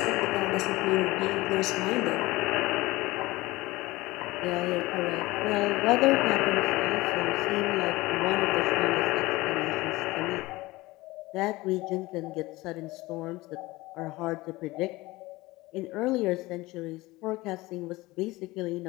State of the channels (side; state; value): right; quieter; 20.3 dB